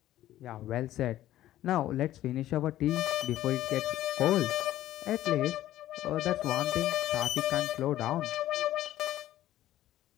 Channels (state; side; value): quieter; right; 13.7 dB